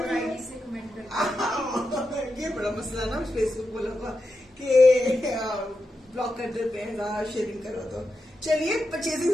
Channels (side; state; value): both; normal; correlation 0.88